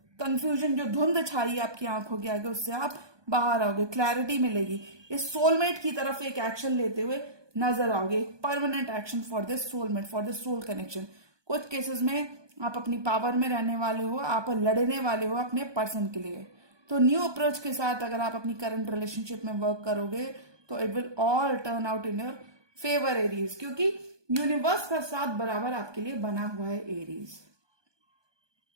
कंफ्यूजन, जो धुंध छाई आपकी आंखों के आगे, उससे आप बाहर आओगे, क्लैरिटी मिलेगी। इस सोलमेट की तरफ एक एक्शन लेते हुए नजर आओगे, permanent action for this soulmate, for this soul connection. कुछ केसेस में आप अपनी पावर में रहने वाले हो, आप लड़ने वाले हो अपने पर्सन के लिए। तो न्यू अप्रोच के साथ अगर आप अपनी करंट रिलेशनशिप में वर्क करोगे तो it will all turn out in your favour Aries, क्योंकि यूनिवर्स का साथ बराबर आपके लिए बना हुआ है एरीज।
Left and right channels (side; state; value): left; late; 1.2 ms